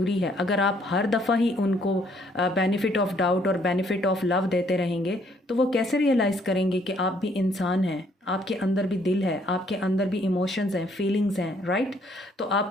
है। अगर आप हर दफ़ा ही उनको बेनिफिट ऑफ डाउट और बेनिफिट ऑफ लव देते रहेंगे तो वो कैसे रियलाइज़ करेंगे कि आप भी इंसान हैं, आपके अंदर भी दिल है, आपके अंदर भी इमोशंस हैं, फीलिंग्स हैं, राइट? तो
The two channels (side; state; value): both; normal; correlation 0.66